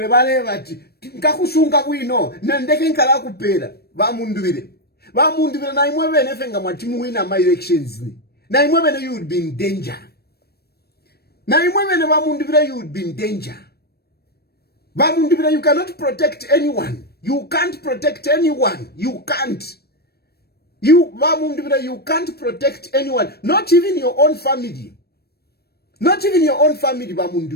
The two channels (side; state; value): right; late; 0.46 ms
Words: bale bati. Nkakusunga kuino, nendeke nkala kupera. Ba mundure na imwebe nefenga mwatimu wina my elections ni. Na imwebe you would be in danger. You would be in danger. You cannot protect anyone. You can't protect anyone. You can't. You can't protect anyone. Not even your own family.